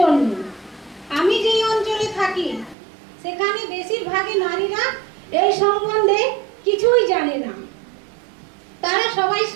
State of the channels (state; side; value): drops out; left; at 2.8 s